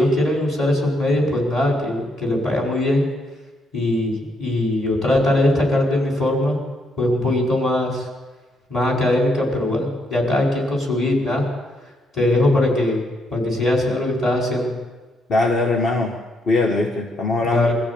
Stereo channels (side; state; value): both; normal; correlation 0.76